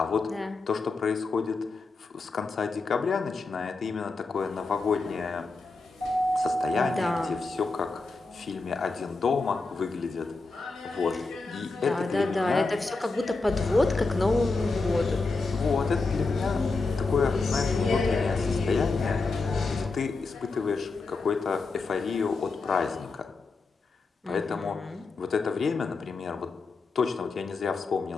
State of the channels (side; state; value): right; quieter; 3.8 dB